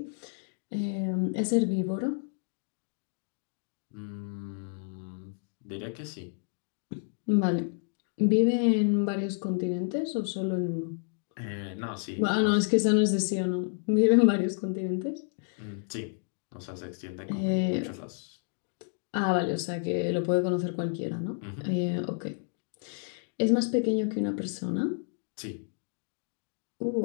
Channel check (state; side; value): silent; right; 58 dB below the other